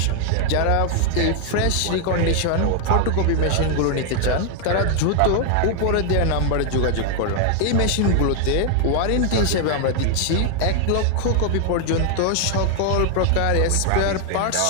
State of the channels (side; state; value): both; different; correlation 0.00